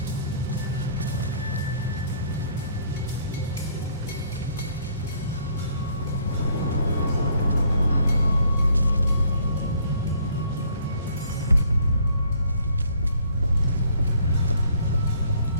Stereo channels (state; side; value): inverted; both; correlation -0.61